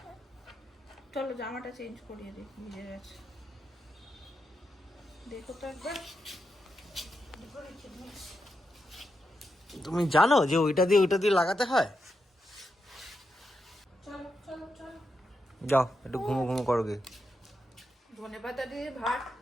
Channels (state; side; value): normal; both; correlation 0.85